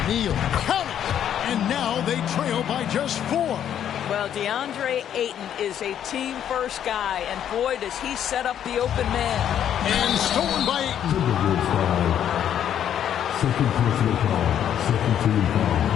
Neal, count it! And now they trail by just 4. Well, DeAndre Ayton is a team-first guy, and boy, does he set up the open man. And stolen by Ayton. Second personal foul, second team foul.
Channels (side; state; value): right; quieter; 9.9 dB